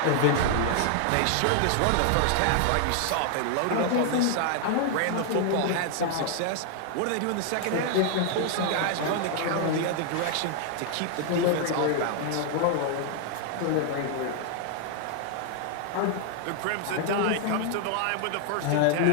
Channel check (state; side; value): different; both; correlation 0.00